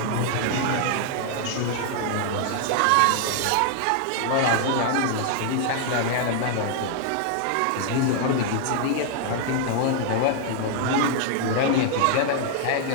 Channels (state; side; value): different; both; correlation 0.00